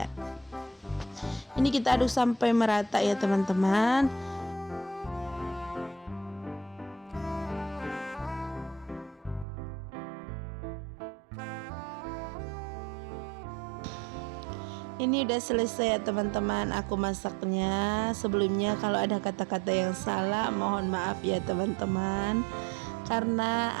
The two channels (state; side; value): drops out; left; at 9.5 s